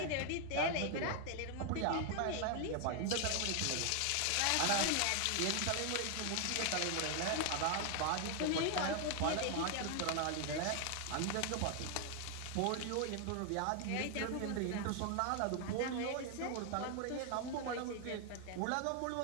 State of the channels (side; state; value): both; different; correlation 0.00